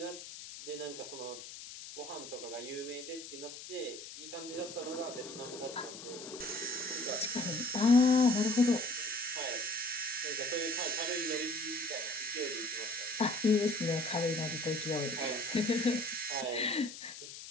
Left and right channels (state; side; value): noise; left; hiss, 12 dB below the sound